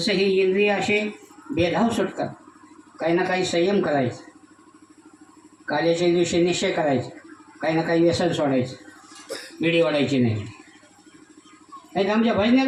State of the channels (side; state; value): both; identical; correlation 1.00